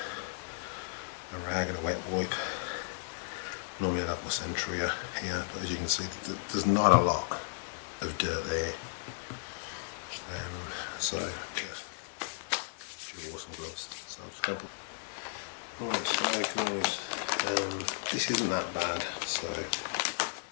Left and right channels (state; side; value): silent; right; 55 dB below the other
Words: a rag and a wet wipe. Normally I'd have my Sentria here, but as you can see, there's not a lot of dirt there. So yeah, dual awesome gloves. So I'm just going to put. Right, so guys, this isn't that bad. So I'm